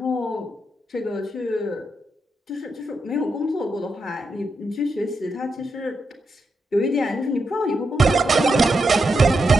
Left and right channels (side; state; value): both; normal; correlation 0.84